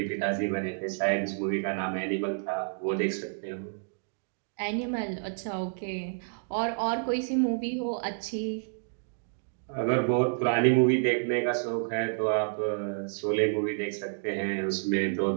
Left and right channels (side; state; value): left; silent; digital silence